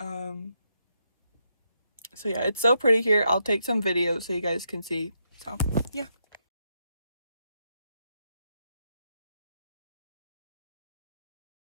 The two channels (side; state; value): both; inverted; correlation -0.81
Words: yeah, it's so pretty here. I'll take some videos so you guys can see. So yeah.